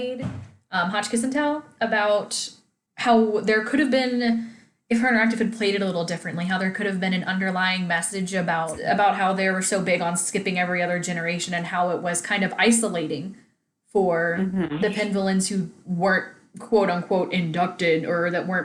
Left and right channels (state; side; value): identical; both; correlation 1.00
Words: Hotchkiss and Tell, about how there could have been, if her interactive had played it a little differently, how there could have been an underlying message about how they were so big on skipping every other generation and how it was kind of isolating for the Penvillains who weren't quote unquote inducted or that